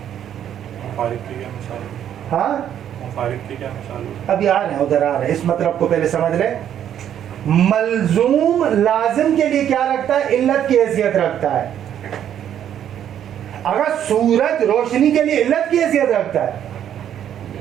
مفارق کی کیا مثال ہے؟ ہاں مفارق کی کیا مثال ہے؟ ابھی آ رہے ہیں, ادھر آ رہے ہیں, اس مطلب کو پہلے سمجھ لیں. ملزوم لازم کے لیے کیا رکھتا ہے علت کی حیثیت رکھتا ہے. اگر سورج روشنی کے لیے علت کی حیثیت رکھتا ہے,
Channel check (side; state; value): left; quieter; 10.0 dB